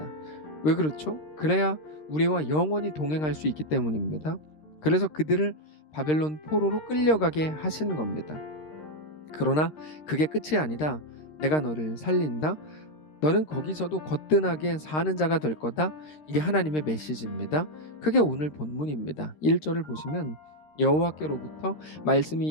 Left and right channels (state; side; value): late; right; 13 ms